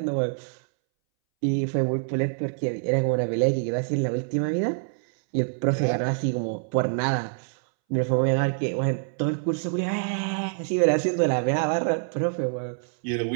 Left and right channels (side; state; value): left; silent; 61 dB below the other